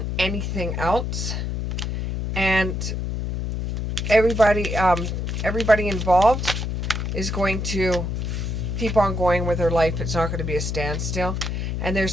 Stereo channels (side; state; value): left; noise; hum, 2 dB below the sound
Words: anything else. And everybody involved is going to keep on going with their life. It's not going to be a standstill. And